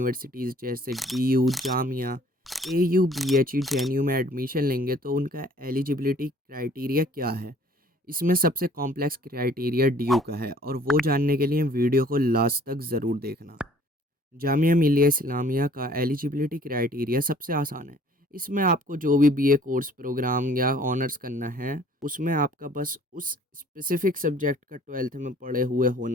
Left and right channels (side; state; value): both; normal; correlation 0.55